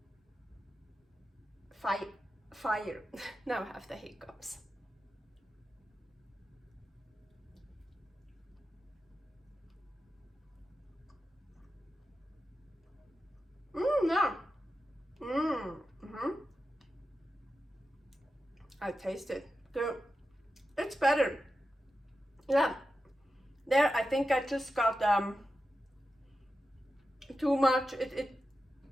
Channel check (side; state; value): both; normal; correlation 0.91